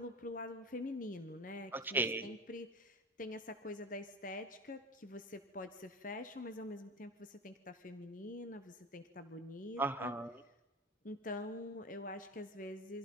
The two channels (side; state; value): both; normal; correlation 0.29